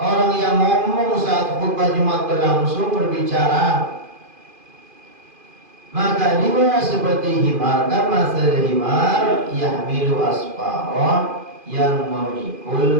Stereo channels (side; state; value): left; late; 2.5 ms